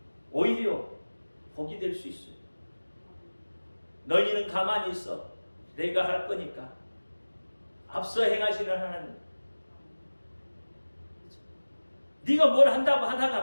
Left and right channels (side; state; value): both; inverted; correlation -1.00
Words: 오히려 복이 될 수 있어요. 너희는 가만히 있어. 내가 할 거니까. 앞서 행하시는 하나님. 네가 뭘 한다고